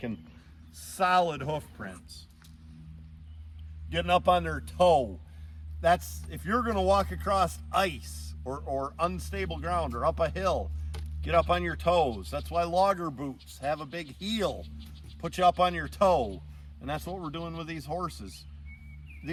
solid hoof prints. Getting up on their toe. That's, if you're gonna walk across ice or unstable ground or up a hill, get up on your toes. That's why logger boots have a big heel, put you up on your toe. And that's what we're doing with these horses.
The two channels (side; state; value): both; identical; correlation 1.00